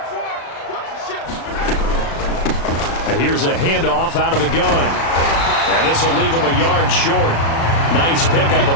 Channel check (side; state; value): right; late; 36 ms